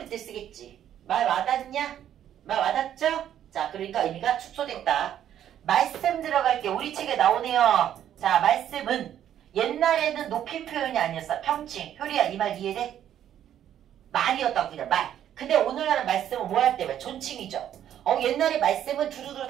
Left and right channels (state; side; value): quieter; left; 10.6 dB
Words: 때 쓰겠지. 말 와닿냐? 말 와닿죠? 자, 그러니까 의미가 축소됐다. 말씀 들어갈게. 우리 책에 나오네요. 자, 말씀은 옛날에는 높임 표현이 아니었어. 평칭. 효리야, 이 말 이해돼? 말이었다고 그냥 말. 근데 오늘날은 말씀은 뭐 할 때? 존칭이죠. 옛날에 말씀은 두루두루